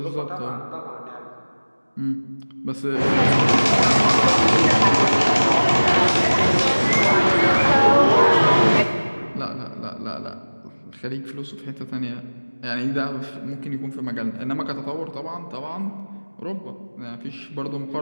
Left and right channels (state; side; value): inverted; both; correlation -1.00